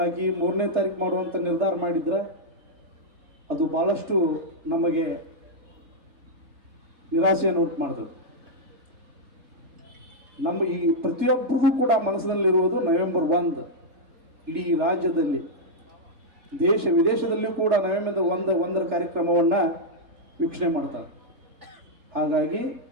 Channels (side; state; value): left; late; 3.4 ms